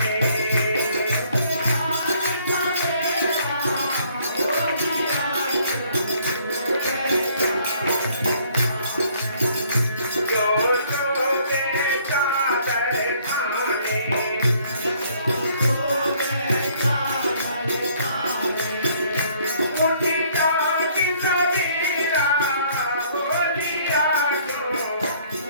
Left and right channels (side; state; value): both; inverted; correlation -0.61